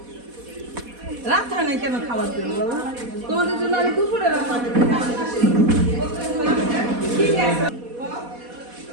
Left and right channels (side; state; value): left; late; 4.1 ms